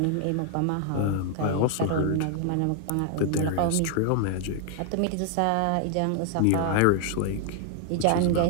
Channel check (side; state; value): both; different; correlation 0.00